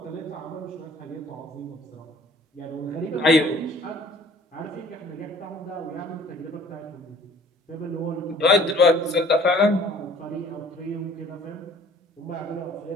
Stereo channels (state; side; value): normal; both; correlation 0.53